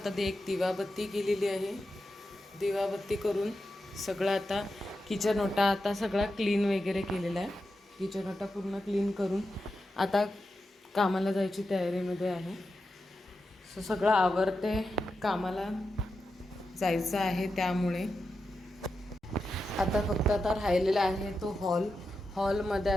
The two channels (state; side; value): normal; both; correlation 0.89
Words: ते एक दिवाबत्ती केलेली आहे. दिवाबत्ती करून सगळं आता किचन ओटा आता सगळा क्लीन वगैरे केलेला आहे. किचन ओटा पूर्ण क्लीन करून आता कामाला जायची तयारीमध्ये आहे. सगळं आवरते, कामाला जायचं आहे. त्यामुळे आता फक्त आता राहिलेला आहे तो हॉलमध्ये